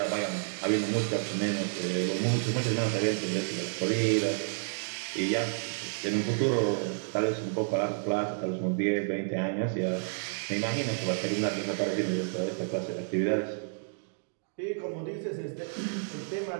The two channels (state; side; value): silent; left; digital silence